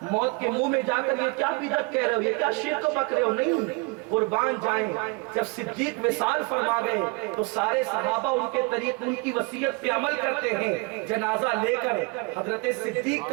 موت کے منہ میں جا کر یہ کیا بدعت کہہ رہے ہو، یہ کیا شرک بک رہے ہو؟ نہیں، قربان جائیں۔ جب صدیق وصال فرما گئے تو سارے صحابہ ان کے طریق ان کی وصیت پہ عمل کرتے ہیں، جنازہ لے کر حضرت صدیق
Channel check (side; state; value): left; quieter; 28.6 dB